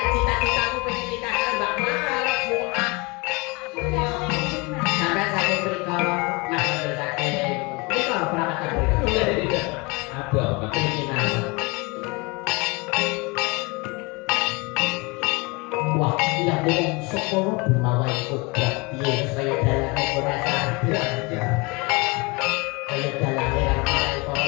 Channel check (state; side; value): quieter; right; 26.9 dB